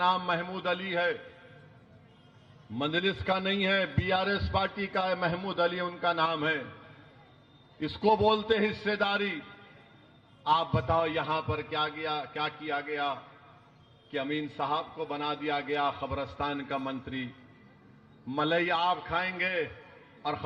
महमूद अली है, मंजलिस का नहीं है, बीआरएस पार्टी का है, महमूद अली उनका नाम है। इसको बोलते हिस्सेदारी। आप बताओ यहां पर क्या किया गया कि अमीन साहब को बना दिया गया खबरस्तान का मंत्री। मलई आप खाएंगे और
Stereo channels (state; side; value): identical; both; correlation 1.00